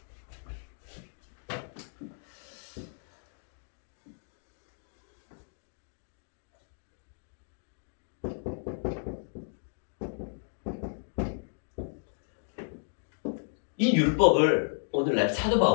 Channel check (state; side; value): silent; right; digital silence